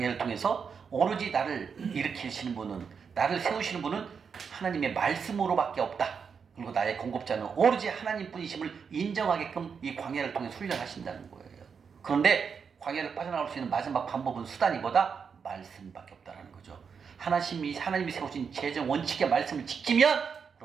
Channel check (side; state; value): left; quieter; 6.2 dB